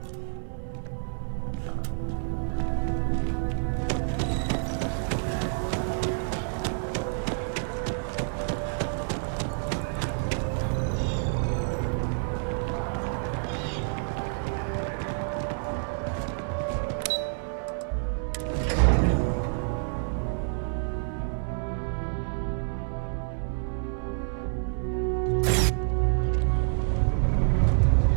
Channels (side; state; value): left; silent; 59 dB below the other